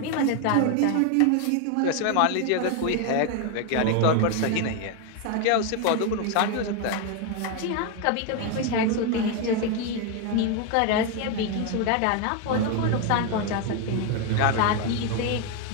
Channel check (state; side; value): different; both; correlation 0.01